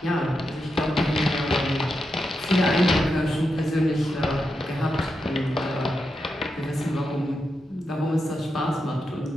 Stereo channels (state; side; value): normal; both; correlation 0.86